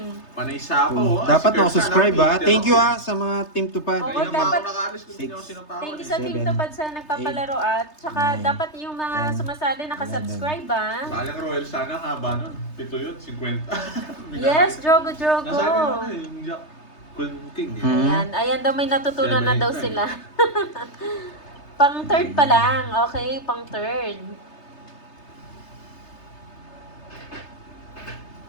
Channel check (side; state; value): right; late; 3.3 ms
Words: Panay sapaw. ah. Dapat Si Kirk subscribe sana, ha. Peter Thank you ako. ha sa mga Team Tupad. Oo, Kaya naman dapat- ako nakaalis kung hindi ako sinapawan. Thank you sa Team 7, Tupad sa nagpapalaro at saka 9, dapat yung mga 10, sumasali nakasubscribe ah. Sayang Royal sana, haba nun. 7 yun, 50. Yes, Drogo, Drogo. Nasabi mo na yung Jack King. eh. Ayan, ayan daw may natutunan na 7, daw 8, 9. sila. Pang third pa lang, okay? Pang third.